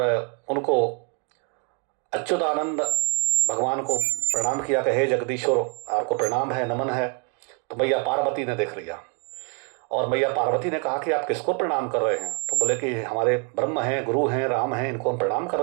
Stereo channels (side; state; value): left; quieter; 37.3 dB